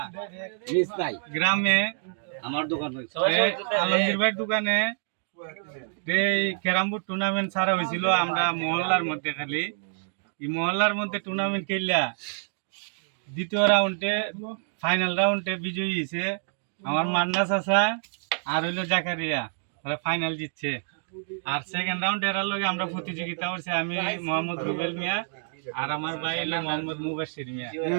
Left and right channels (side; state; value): left; silent; digital silence